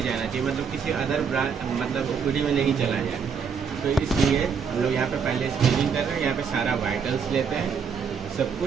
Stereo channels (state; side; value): quieter; left; 6.2 dB